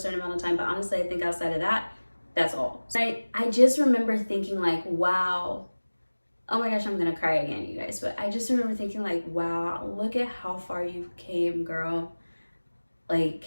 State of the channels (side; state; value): both; inverted; correlation -1.00